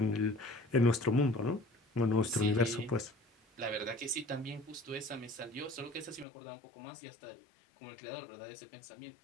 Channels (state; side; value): drops out; right; at 6.2 s